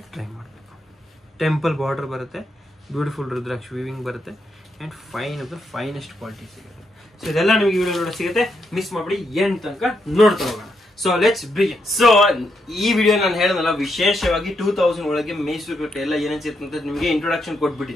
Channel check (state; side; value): normal; both; correlation 0.80